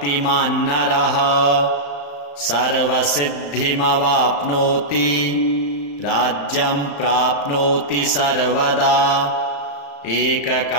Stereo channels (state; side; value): late; right; 35 ms